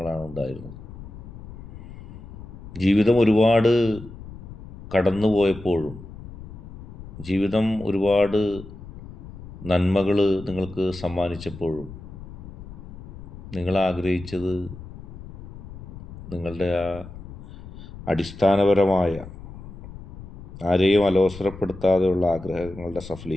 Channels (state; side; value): noise; left; rumble, 14 dB below the sound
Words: ഉണ്ടായിരുന്നത്. ജീവിതം ഒരുപാട് കടന്നുപോയപ്പോഴും, ജീവിതം ഒരുപാട് നന്മകൾ നിങ്ങൾക്ക് സമ്മാനിച്ചപ്പോഴും നിങ്ങൾ ആഗ്രഹിച്ചത് നിങ്ങളുടെ ആ അടിസ്ഥാനപരമായ, ആരെയും അലോസരപ്പെടുത്താതെയുള്ള ആഗ്രഹങ്ങളുടെ